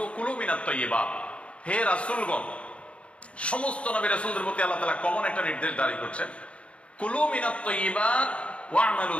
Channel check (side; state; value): right; late; 0.061 ms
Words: কুলু মিনাত তাইয়্যিবাত, হে রাসূলগণ, সমস্ত নবী রাসূলদের প্রতি আল্লাহ তাআলা কমন একটা নির্দেশ জারি করছেন, কুলু মিনাত তাইয়্যিবাত ওয়া'মালু